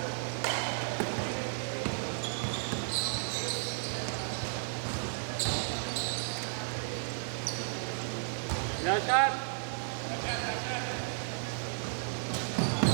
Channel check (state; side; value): silent; left; digital silence